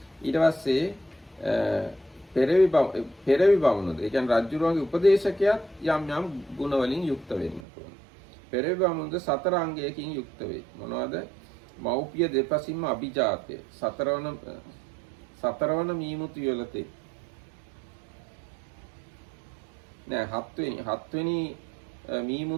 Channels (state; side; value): drops out; left; at 7.7 s